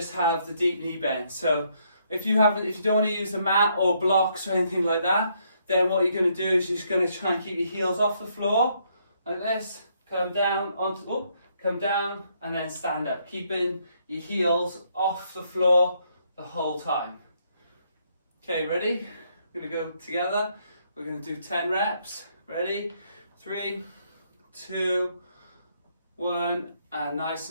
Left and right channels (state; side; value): inverted; both; correlation -0.72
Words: have the deep knee bend. So if you don't want to use the mat or blocks or anything like that, then what you're going to do is you're just going to try and keep your heels off the floor like this. Come down come down and then stand up, keeping your heels off the floor the whole time. Okay, ready? We're going to go together. We're going to do 10 reps. Ready? 3, 2, 1, and nice